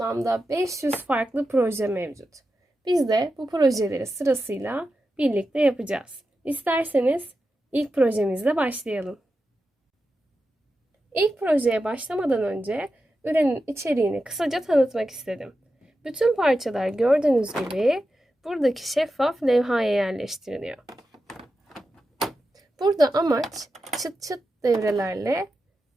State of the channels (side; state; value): both; normal; correlation 0.90